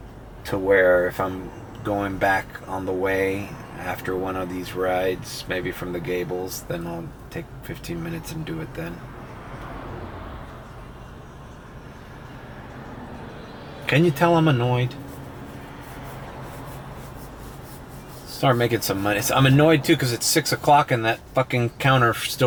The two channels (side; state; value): both; identical; correlation 1.00